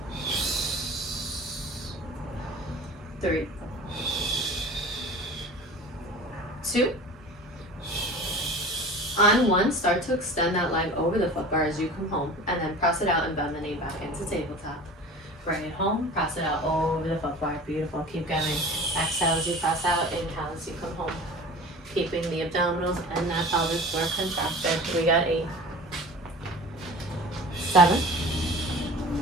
3. 2. On 1, start to extend that leg over the foot bar as you come home, and then press it out and bend the knee back into tabletop. Bring it home, press it out over the foot bar. Beautiful. Keep going. Exhale as you press out, inhale as you come home. Keeping the abdominals and that pelvic floor contracted. We got 8. 7.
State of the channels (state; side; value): normal; both; correlation 0.39